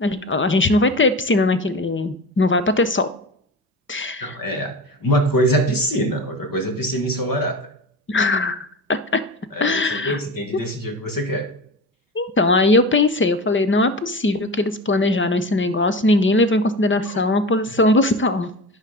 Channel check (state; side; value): normal; both; correlation 0.29